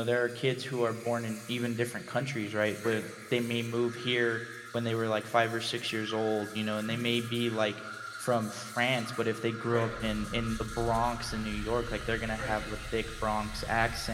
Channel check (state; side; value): identical; both; correlation 1.00